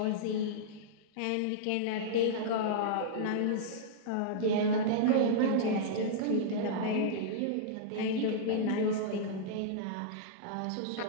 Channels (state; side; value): different; both; correlation -0.03